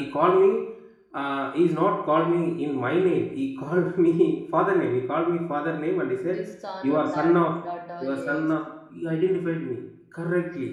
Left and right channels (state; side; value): identical; both; correlation 1.00